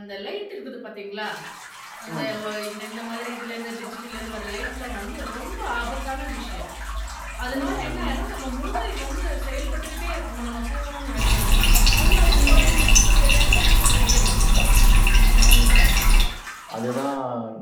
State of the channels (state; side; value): identical; both; correlation 1.00